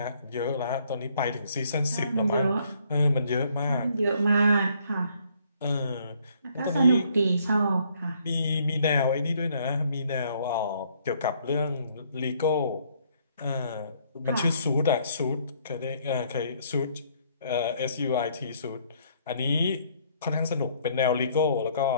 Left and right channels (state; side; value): inverted; both; correlation -0.65